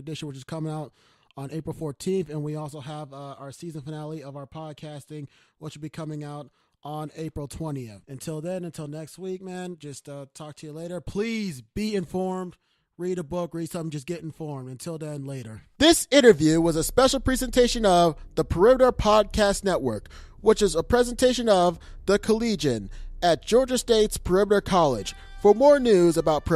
which is coming out on April 14th. And we also have our season finale of our podcasting, which will be coming out on April 20th. Until then, until next week, man, just talk to you later. Please be informed. read a book, read something, just get informed. Until then, later. This interview was a special presentation of the Perimeter Podcast Network, which is a presentation of The Collegian at Georgia State's Perimeter College. For more news about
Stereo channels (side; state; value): both; identical; correlation 1.00